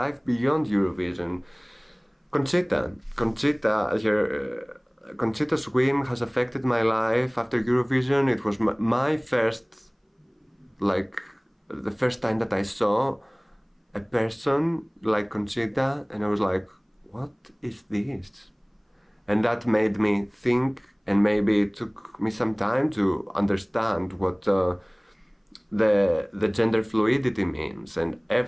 beyond Eurovision? Conchita's win has affected my life after Eurovision. It was my first, like, the first time that I saw a person like Conchita, and I was like, what is this? And that made me think, and maybe it took me some time to understand what the gender fluidity means and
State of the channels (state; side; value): identical; both; correlation 1.00